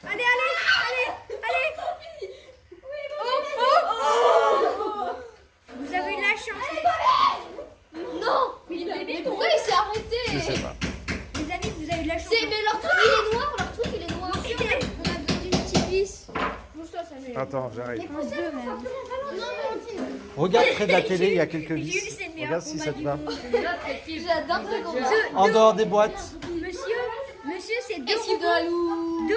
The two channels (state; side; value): identical; both; correlation 1.00